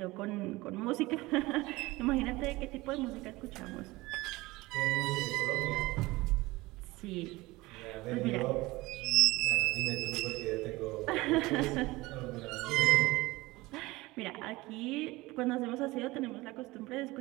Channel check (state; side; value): quieter; left; 20.7 dB